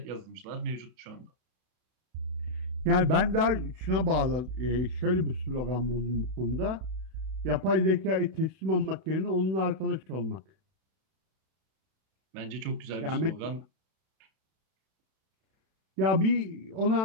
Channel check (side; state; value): left; late; 31 ms